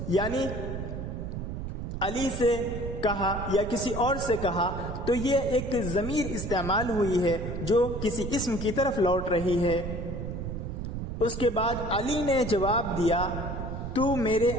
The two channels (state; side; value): noise; right; rumble, 5 dB below the sound